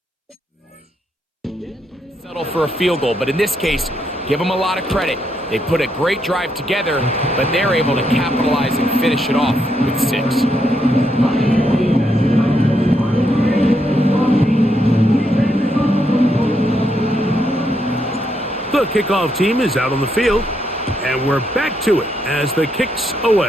For a field goal, but in this case, give them a lot of credit. They put a great drive together, but they're able to capitalize and finish it off with 6. The kickoff team is out on the field, and we're back to it as the kick's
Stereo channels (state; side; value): normal; both; correlation 0.78